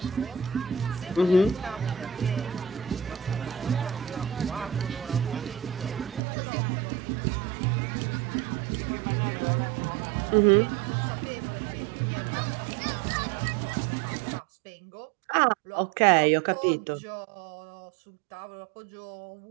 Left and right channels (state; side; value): drops out; left; at 6.2 s